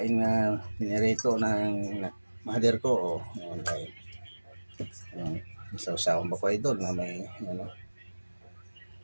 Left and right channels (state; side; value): inverted; both; correlation -1.00